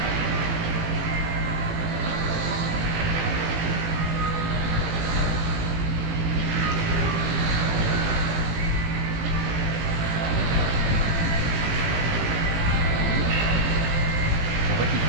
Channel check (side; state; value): left; late; 18 ms